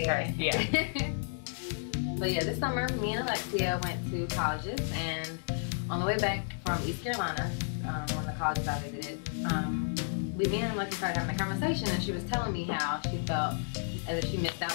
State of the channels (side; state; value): right; silent; 56 dB below the other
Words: curse, yeah. So yeah, this summer, me and Alexia went to colleges, and on the way back from East Carolina, one of the colleges I visited, me and Alexia started having a conversation, and she was telling me how she felt as if she missed